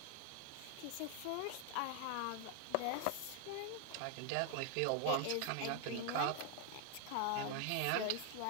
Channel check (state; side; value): different; both; correlation 0.00